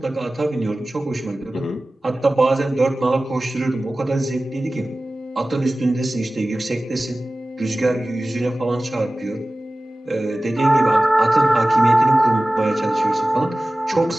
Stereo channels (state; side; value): normal; both; correlation 0.97